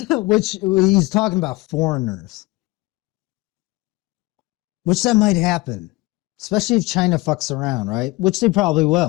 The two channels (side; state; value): right; quieter; 21.7 dB